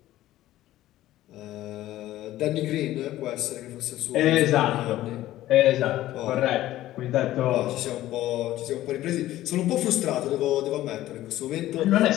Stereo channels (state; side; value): quieter; right; 14.8 dB